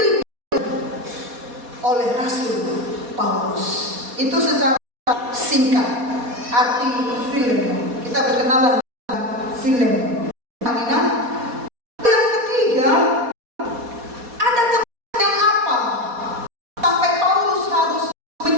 oleh Rasul Paulus. Itu secara singkat arti Filemon. Kita berkenalan dengan Filemon. Amina. Yang ketiga, ada kepentingan apa sampai Paulus harus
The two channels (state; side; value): late; left; 4.2 ms